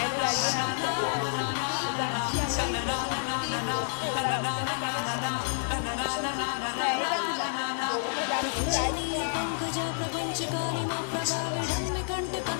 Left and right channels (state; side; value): silent; right; digital silence